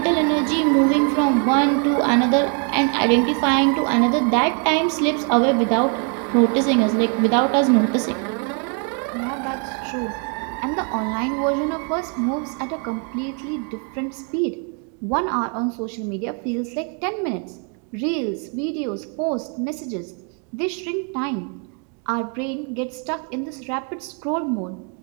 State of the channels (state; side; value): quieter; left; 39.5 dB